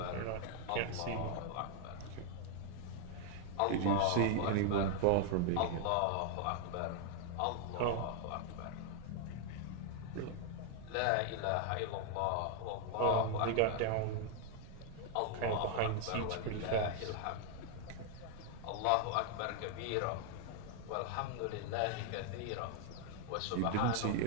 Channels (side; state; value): both; different; correlation 0.00